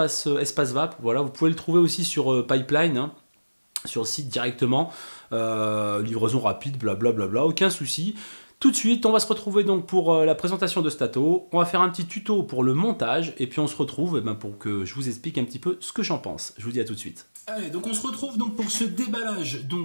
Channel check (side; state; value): both; inverted; correlation -1.00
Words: Vap, voilà, vous pouvez le trouver aussi sur Pipeline, hein, sur le site directement, livraison rapide, blablabla, aucun souci. Tout de suite, on va se retrouver donc pour la présentation de cet ato. On va faire un petit tuto pour le montage et puis on se retrouve pour que je vous explique un petit peu ce que j'en pense. Je vous dis à tout de suite. Allez, donc on se retrouve donc pour ce déballage